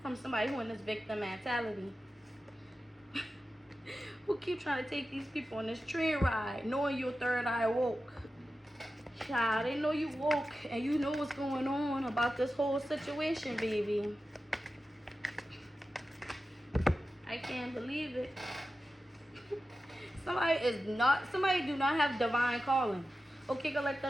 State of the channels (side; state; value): both; normal; correlation 0.93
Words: from somebody who in this victim mentality. Who keep trying to take these people on this train ride, knowing your third eye woke. Child, they know you woke and you know what's going on about this whole situation, baby. I can't believe it. Somebody do not have divine calling. Okay,